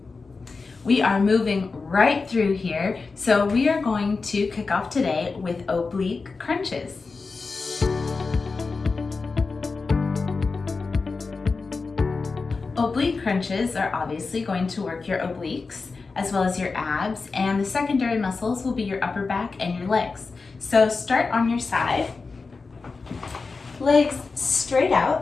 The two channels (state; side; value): quieter; right; 4.3 dB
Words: We are moving right through here, so we are going to kick off today with oblique crunches. Oblique crunches are obviously going to work your obliques as well as your abs, and the secondary muscles will be your upper back and your legs. So start on your side, legs straight